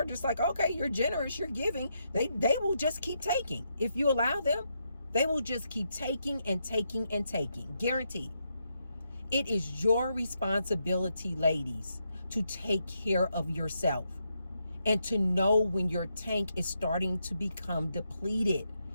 just like, okay, you're generous, you're giving. They will just keep taking. If you allow them, they will just keep taking and taking and taking. Guaranteed. It is your responsibility, ladies, to take care of yourself and to know when your tank is starting to become depleted.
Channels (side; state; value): both; inverted; correlation -0.80